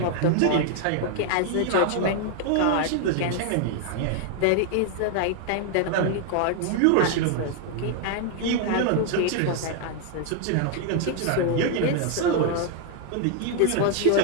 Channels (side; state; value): both; different; correlation 0.00